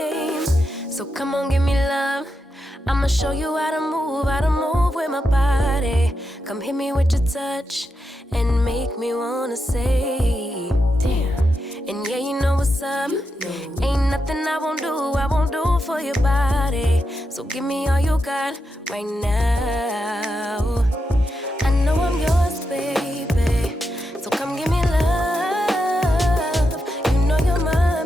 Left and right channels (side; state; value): both; normal; correlation 0.86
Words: So come on, give me love. I'ma show you how to move with my body. Come hit me with your touch and make me wanna say, damn. And yeah, you know what's up. Ain't nothing I won't do for your body. So give me all you got right now. I know I'm yours, baby. So come give me love. You know you're